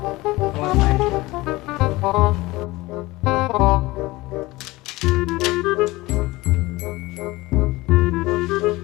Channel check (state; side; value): quieter; right; 20.2 dB